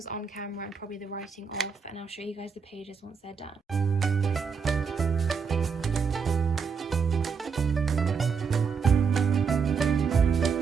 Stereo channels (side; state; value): left; quieter; 5.8 dB